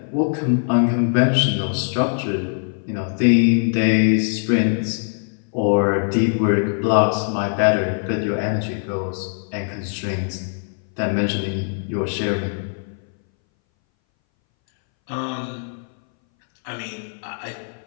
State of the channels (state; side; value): silent; right; 61 dB below the other